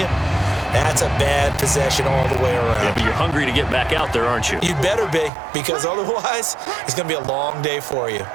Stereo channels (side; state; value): left; drops out; at 5.3 s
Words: that's a bad possession all the way around. Yeah, but you're hungry to get back out there, aren't you? You better be, because otherwise, it's going to be a long day for you.